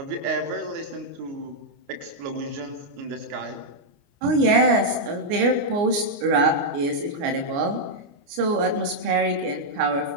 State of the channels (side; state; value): left; late; 29 ms